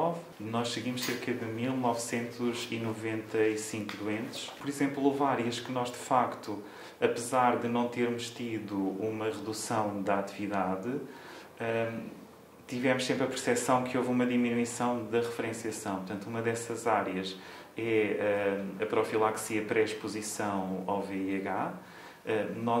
Nós seguimos cerca de 1995 doentes. Por exemplo, houve áreas que nós, de facto, apesar de não termos tido uma redução da atividade, tivemos sempre a percepção que houve uma diminuição da referenciação. Portanto, uma dessas áreas é a profilaxia pré-exposição ao VIH.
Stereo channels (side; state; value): both; identical; correlation 1.00